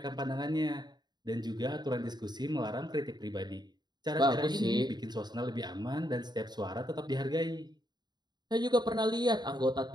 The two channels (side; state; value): left; late; 0.20 ms